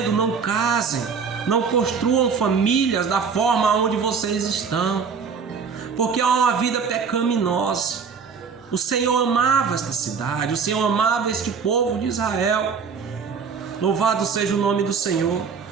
não casem, não construam famílias da forma onde vocês estão, porque é uma vida pecaminosa. O Senhor amava esta cidade, o Senhor amava este povo de Israel. Louvado seja o nome do Senhor.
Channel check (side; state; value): left; quieter; 5.9 dB